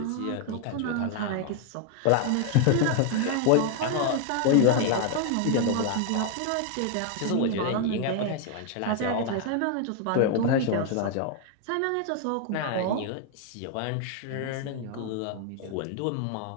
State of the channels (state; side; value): different; both; correlation 0.00